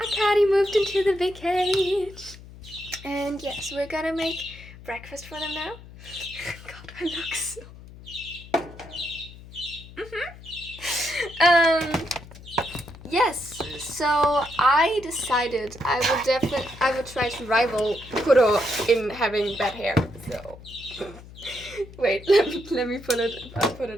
moved into the big cage. And yes, we're gonna make breakfast for them now. God, I look so... Yes, so I decided I would try to rival Kuro in having bad hair. So wait, let me put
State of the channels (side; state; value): left; noise; hum, 18 dB below the sound